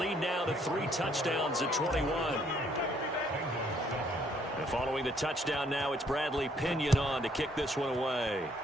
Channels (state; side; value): normal; both; correlation 0.66